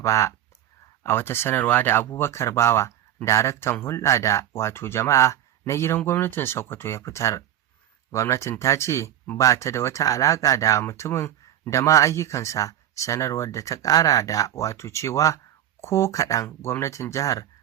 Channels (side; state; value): left; quieter; 11.4 dB